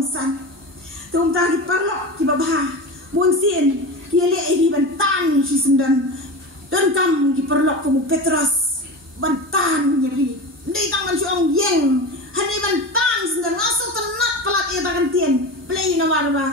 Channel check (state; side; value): normal; both; correlation 0.26